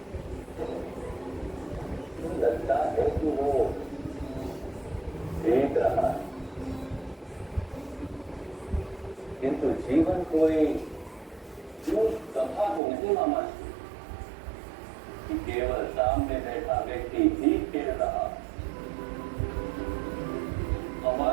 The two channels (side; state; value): left; drops out; at 12.8 s